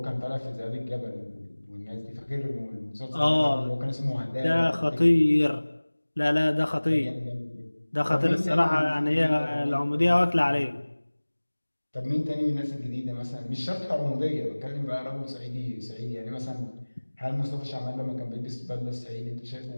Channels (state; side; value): inverted; both; correlation -1.00